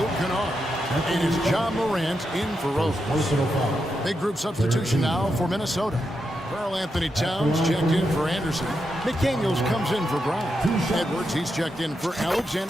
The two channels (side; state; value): both; normal; correlation 0.85